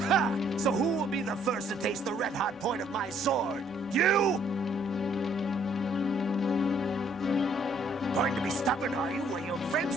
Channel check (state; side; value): normal; both; correlation 0.65